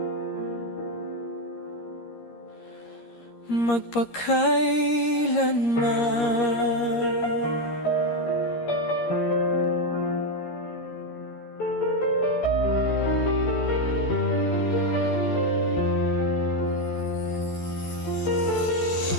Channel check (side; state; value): right; late; 13 ms